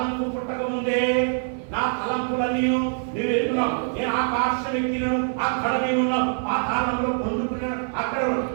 పుట్టక ముందే నా తలంపులన్నీ నువ్వు ఎరుగున్నావు. నేను ఆకాశం ఎక్కినాను, అక్కడ నేనున్నావు. పాతాళంలో పొందుకున్నాను, అక్కడ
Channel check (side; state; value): left; silent; digital silence